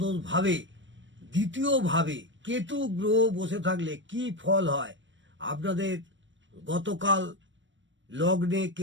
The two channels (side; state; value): left; late; 0.54 ms